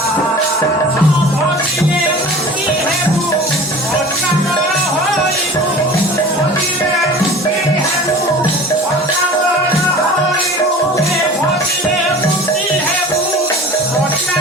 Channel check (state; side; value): normal; both; correlation 0.41